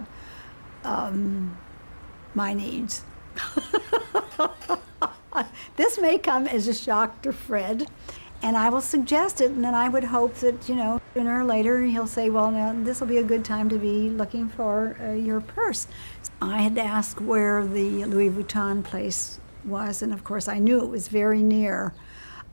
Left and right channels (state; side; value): inverted; both; correlation -1.00